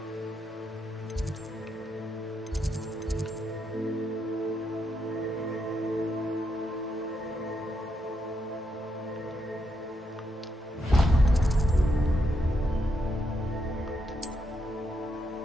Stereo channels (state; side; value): normal; both; correlation 0.80